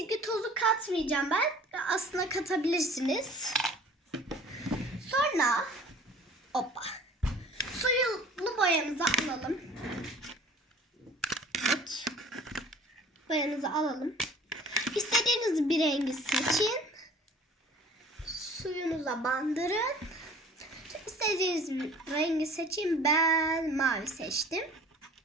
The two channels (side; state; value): both; normal; correlation 0.48